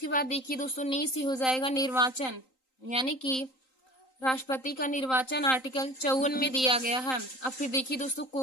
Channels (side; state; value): right; late; 3.9 ms